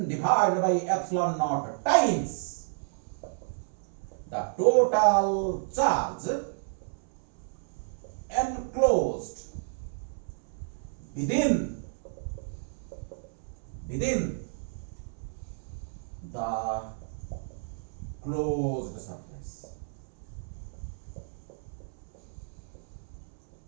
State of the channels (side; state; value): left; silent; 57 dB below the other